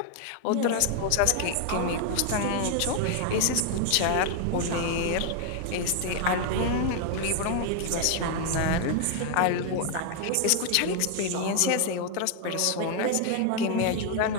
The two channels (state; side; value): different; both; correlation 0.00